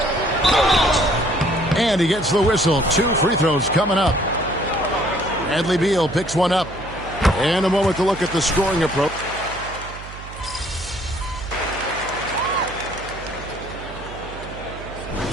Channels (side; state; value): right; noise; hum, 14 dB below the sound